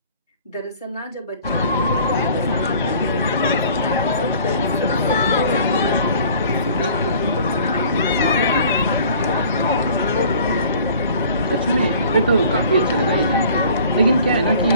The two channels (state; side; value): inverted; both; correlation -0.50